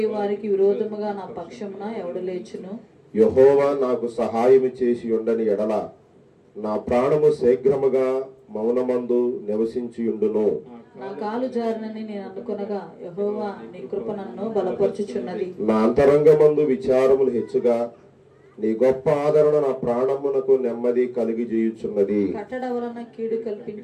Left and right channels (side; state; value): both; identical; correlation 1.00